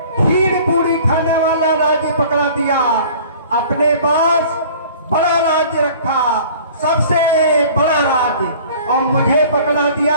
खीर पूरी खाने वाला राज्य पकड़ा दिया। अपने पास बड़ा राज्य रखा, सबसे बड़ा राज्य, और मुझे पकड़ा दिया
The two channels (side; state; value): both; inverted; correlation -0.48